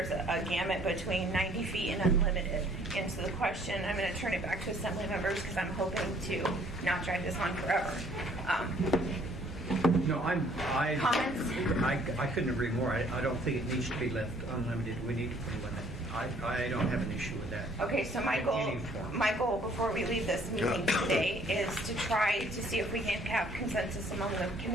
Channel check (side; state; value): both; normal; correlation 0.60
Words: gamut between 90 feet and unlimited. And so the question, I'm going to turn it back to Assembly members because I'm hoping to not drag this on forever. No, Comments? I couldn't agree more. I don't think it needs to be left unlimited. We need to put a limit. I don't have an issue with that. Okay, so my goal before we leave this meeting today is to try to see if we can have consensus among the